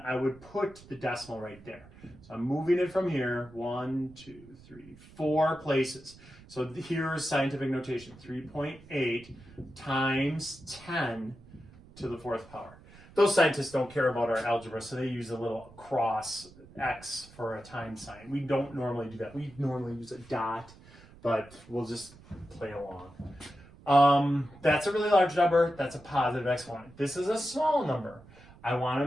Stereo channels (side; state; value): right; noise; rumble, 22 dB below the sound